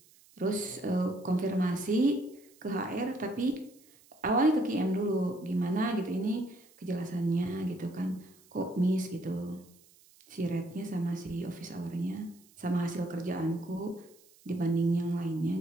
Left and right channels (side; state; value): right; noise; hiss, 27 dB below the sound